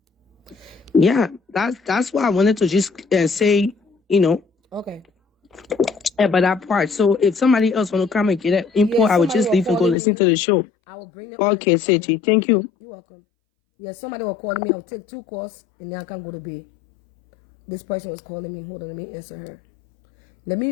Yeah, that's why I wanted to just say, Okay. about that part. So if somebody else want to come and get that info, Yeah, I would somebody just was leave and go calling listen me. to the show. I will bring them Okay, on. Seji, thank you. You're welcome. Yeah, somebody was calling me. I'll take 2 calls and then I can go to bed. This person was calling me. Hold on, let me answer her. Let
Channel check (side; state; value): right; drops out; at 10.0 s